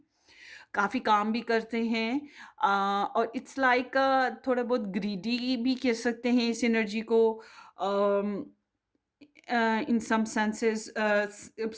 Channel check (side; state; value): both; identical; correlation 1.00